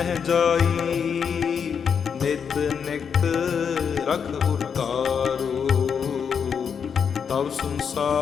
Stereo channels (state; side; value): quieter; right; 6.9 dB